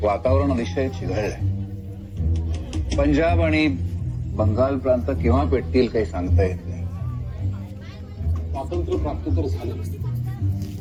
वातावरण अतिशय चिघळलंय. पंजाब आणि बंगाल प्रांत केव्हा पेटतील काही सांगता येत नाही. स्वातंत्र्य प्राप्त तर झालं,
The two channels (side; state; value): both; identical; correlation 1.00